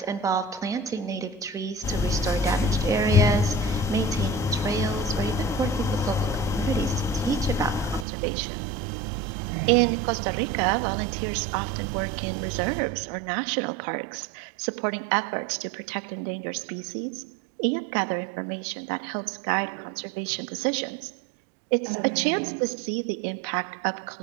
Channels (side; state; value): left; drops out; at 8.1 s